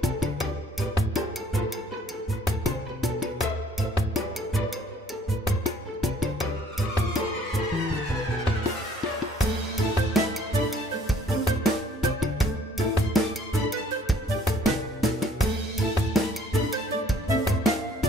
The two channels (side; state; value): both; normal; correlation 0.58